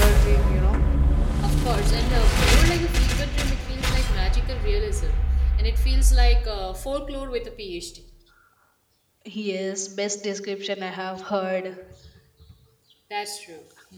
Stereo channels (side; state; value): both; identical; correlation 1.00